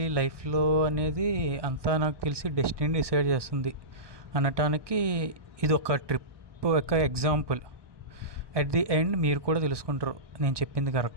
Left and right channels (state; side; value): late; left; 1.2 ms